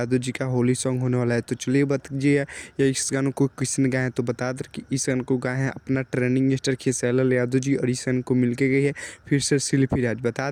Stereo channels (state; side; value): identical; both; correlation 1.00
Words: जी का होली सॉन्ग होने वाला है। तो चलिए बताइए या इस गानों को किसने गाया है। तो बता दें कि इस गाने को गाए हैं अपना ट्रेंडिंग स्टार खेसारी यादव जी, और इस गाने को मिलके गई है फिर से शिल्पी राज। बता